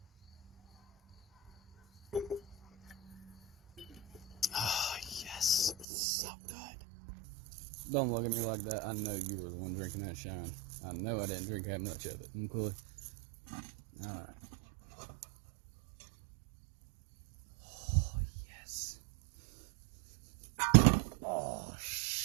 Oh, yes. So good. Don't look at me like that. I know you were the one drinking that shine. I know I didn't drink that much of it. Okay? All right.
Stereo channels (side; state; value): left; drops out; at 5.9 s